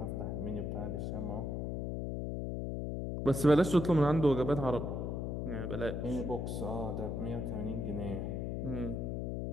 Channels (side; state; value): left; noise; hum, 2 dB below the sound